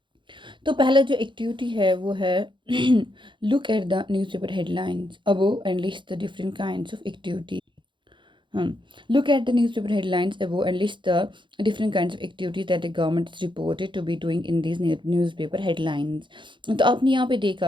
तो पहला जो एक्टिविटी है वो है look at the newspaper headlines above and list the different kinds of activity. Look at the newspaper headlines above and list the different kinds of activities that the government is reported to be doing in these newspaper headlines. तो आपने यहाँ पे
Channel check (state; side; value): late; left; 0.23 ms